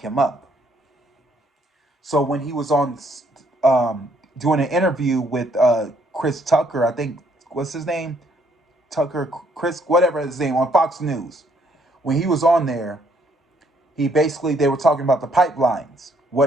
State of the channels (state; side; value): normal; both; correlation 0.68